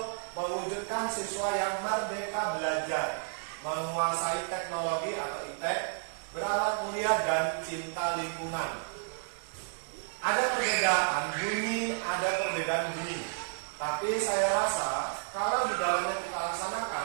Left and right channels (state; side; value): silent; left; digital silence